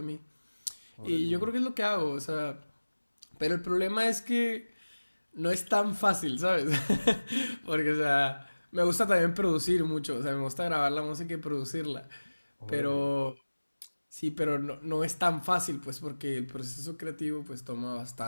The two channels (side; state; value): both; inverted; correlation -1.00